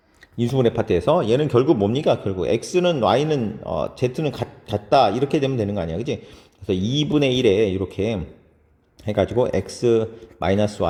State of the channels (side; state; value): both; identical; correlation 1.00